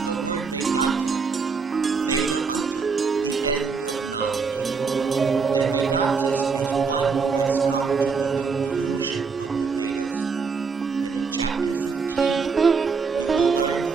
the word Vedanta, Veda Anta, the end of knowledge. The Vedantist is one who has come to the conclusion of the Vedas. And in chapter 15, we will learn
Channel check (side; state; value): left; quieter; 5.1 dB